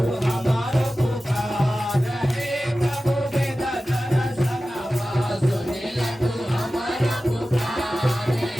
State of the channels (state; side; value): normal; both; correlation 0.95